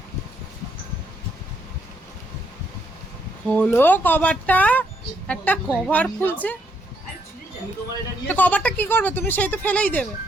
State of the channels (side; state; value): both; normal; correlation 0.74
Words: হলো কভারটা, একটা কভার খুলছে। তো কভারটা কি করবে তুমি? সেই তো ফেলেই দেবে।